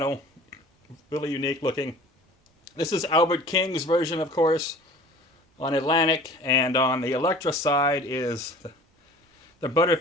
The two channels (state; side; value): normal; both; correlation 0.45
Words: really unique looking. This is Albert King's version, of course, on Atlantic, and on the Elektra side is the